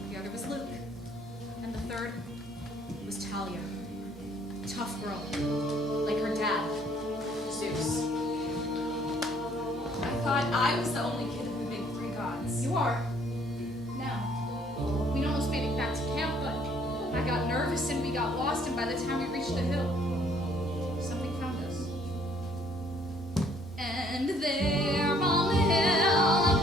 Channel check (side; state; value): both; normal; correlation 0.62